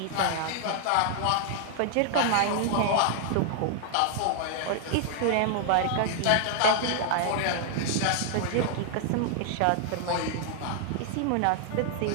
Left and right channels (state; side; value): different; both; correlation 0.00